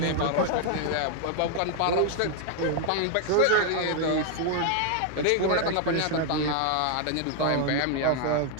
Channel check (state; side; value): different; both; correlation 0.00